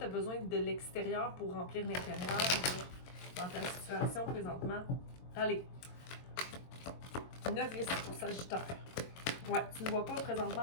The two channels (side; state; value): right; late; 22 ms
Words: as besoin de l'extérieur pour remplir l'intérieur dans ta situation présentement? Allez. Novice pour Sagittaire. Ouais, tu ne vois pas présentement